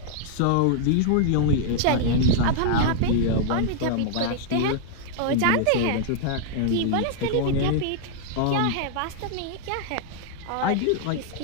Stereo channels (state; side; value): different; both; correlation -0.01